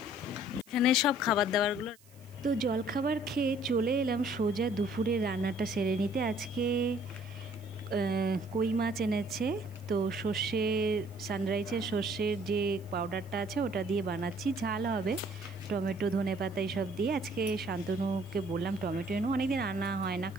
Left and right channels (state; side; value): noise; right; hiss, 27 dB below the sound